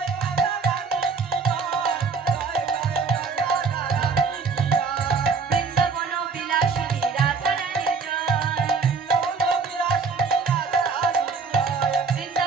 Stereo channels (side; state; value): left; quieter; 4.9 dB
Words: বৃন্দাবন বিলাসিনী রাধা রানী জয়,